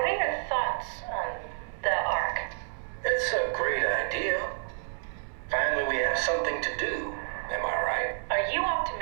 are your thoughts on the Ark? It's a great idea. Finally, we have something to do. Am I right? Are you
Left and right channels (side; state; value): left; silent; 58 dB below the other